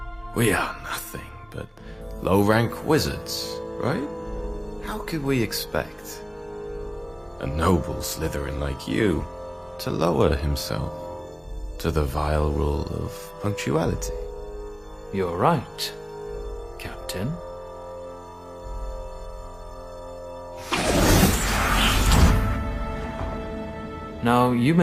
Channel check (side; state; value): both; identical; correlation 1.00